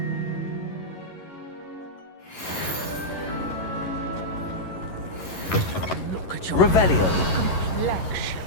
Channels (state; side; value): late; right; 11 ms